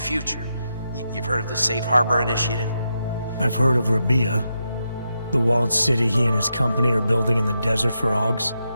You've heard of the Safe Harbor Initiative? I've heard of Rabia, the walled city he and his company are building in the desert for Ogs.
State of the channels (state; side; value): inverted; both; correlation -0.85